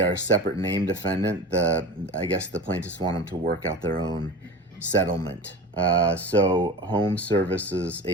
a separate name defendant, I guess the plaintiffs want them to work out their own settlement. So Home Services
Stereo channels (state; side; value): normal; both; correlation 0.32